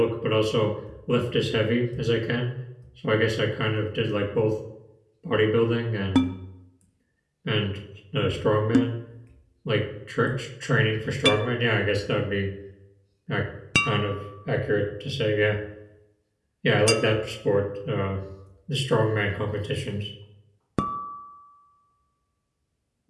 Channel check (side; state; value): both; identical; correlation 1.00